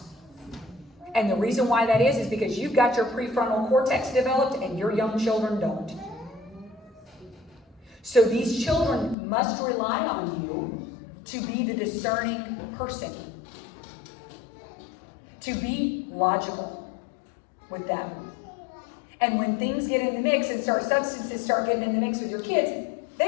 And the reason why that is because you've got your prefrontal cortex developed and your young children don't. So these children must rely on you to be the discerning person, to be logical with them. And when things get in the mix and substances start getting in the mix with your kids,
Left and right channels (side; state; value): right; drops out; at 9.2 s